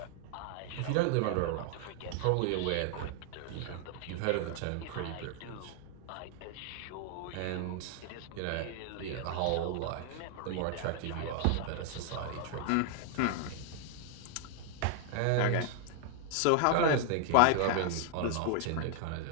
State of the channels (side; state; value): both; different; correlation 0.00